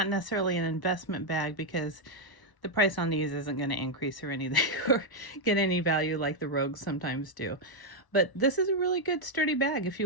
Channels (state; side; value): late; right; 1.0 ms